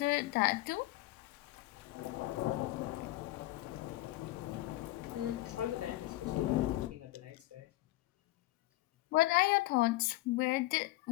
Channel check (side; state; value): right; quieter; 18.0 dB